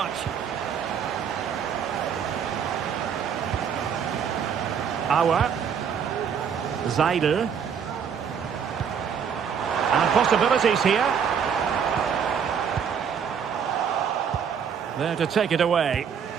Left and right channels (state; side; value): quieter; left; 7.4 dB